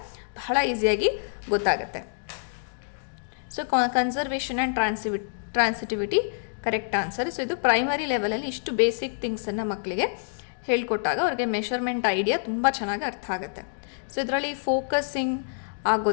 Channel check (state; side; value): silent; right; digital silence